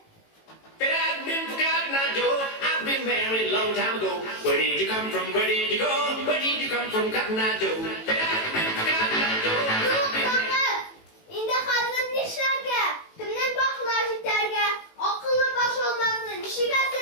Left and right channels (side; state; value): right; late; 18 ms